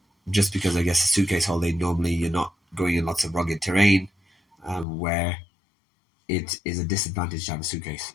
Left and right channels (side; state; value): right; drops out; at 4.9 s